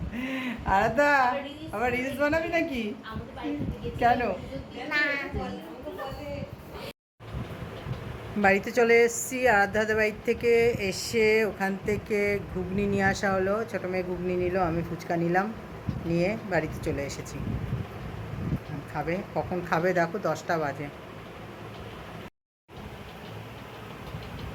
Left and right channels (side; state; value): both; identical; correlation 1.00